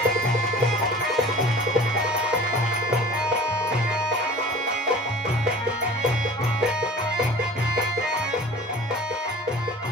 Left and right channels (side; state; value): both; normal; correlation 0.44